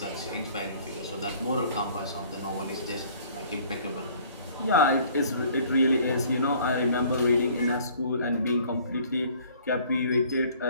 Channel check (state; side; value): inverted; both; correlation -0.55